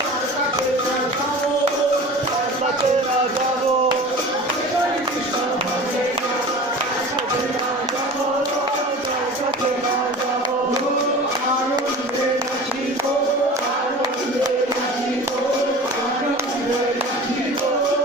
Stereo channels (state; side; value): normal; both; correlation 0.38